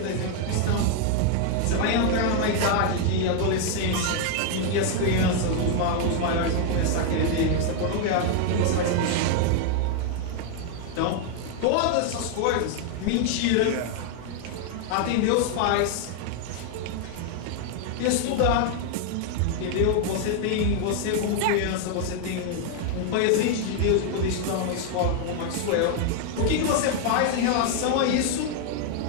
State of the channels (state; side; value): different; both; correlation 0.00